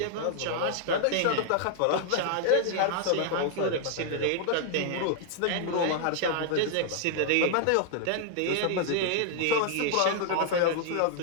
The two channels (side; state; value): both; different; correlation -0.01